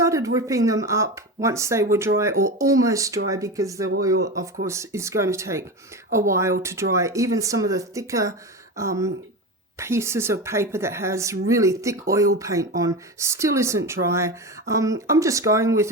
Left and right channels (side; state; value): both; normal; correlation 0.23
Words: ripping them up once they were dry, or almost dry, because the oil, of course, is going to take a while to dry. Even some of the thicker pieces of paper that has really thick oil paint on still isn't dry. I'm just going with